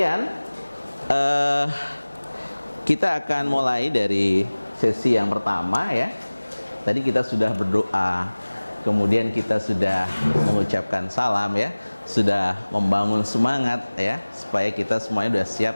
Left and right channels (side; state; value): both; inverted; correlation -1.00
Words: kita akan mulai dari sesi yang pertama ya. Tadi kita sudah berdoa, kemudian kita sudah mengucapkan salam ya, sudah membangun semangat ya, supaya kita semuanya sudah